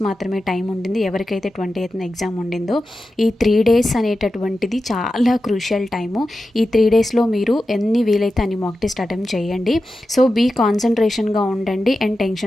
మాత్రమే టైం ఉండింది. ఎవరికైతే 28th ఎగ్జామ్ ఉండిందో ఈ 3 డేస్ అనేటటువంటిది చాలా క్రూషియల్ టైము. ఈ 3 డేస్లో మీరు ఎన్ని వీలైతే అన్ని మాక్ టెస్ట్ అటెంప్ట్ చేయండి. సో బీ కాన్సన్ట్రేషన్గా ఉండండి అండ్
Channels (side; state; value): both; normal; correlation 0.92